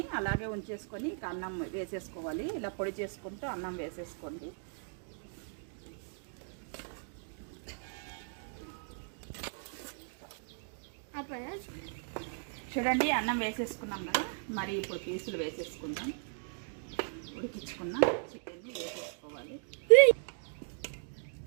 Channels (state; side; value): silent; left; digital silence